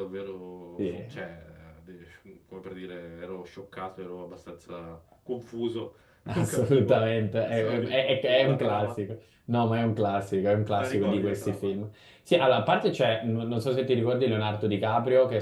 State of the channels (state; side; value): identical; both; correlation 1.00